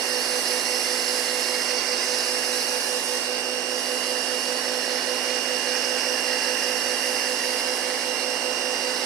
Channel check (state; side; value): quieter; left; 9.1 dB